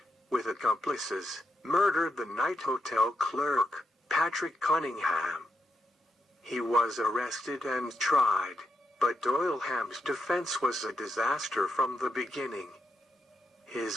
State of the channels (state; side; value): normal; both; correlation 0.83